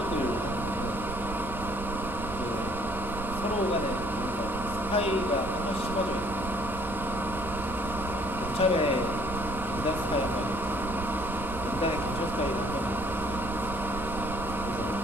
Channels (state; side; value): noise; right; rumble, 9 dB below the sound